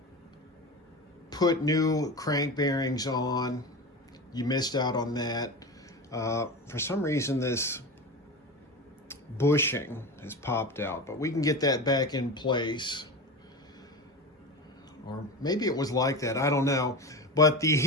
put new crank bearings on. You missed out on that. For some reason, this bushing has popped out, but we can get that back in place. Or maybe it was like that, I don't know. But the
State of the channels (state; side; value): normal; both; correlation 0.26